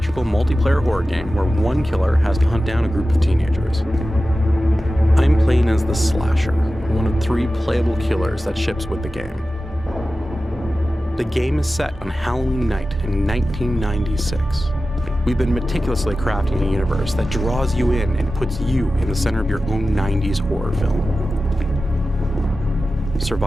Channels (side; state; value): both; normal; correlation 0.94